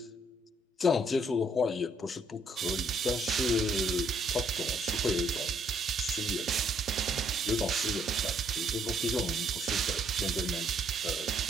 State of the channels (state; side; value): normal; both; correlation 0.68